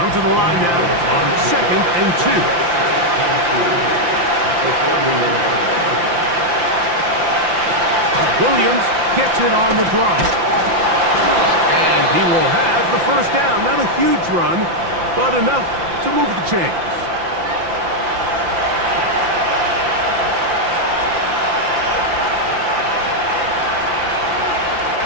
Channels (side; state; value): left; late; 5.8 ms